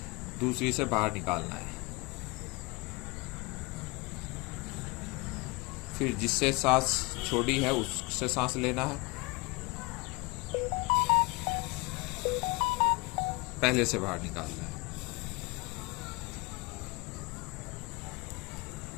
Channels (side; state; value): right; quieter; 25.2 dB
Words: दूसरी से बाहर निकालना है। फिर जिससे सांस छोड़ी है उससे सांस लेना है, पहले से बाहर निकालना है।